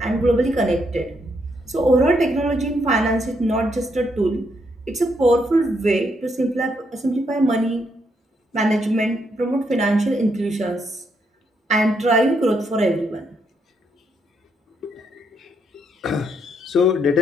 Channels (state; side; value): normal; both; correlation 0.76